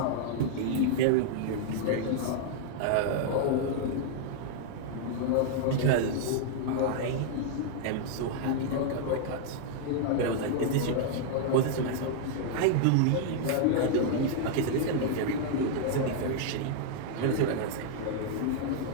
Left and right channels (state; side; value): different; both; correlation 0.00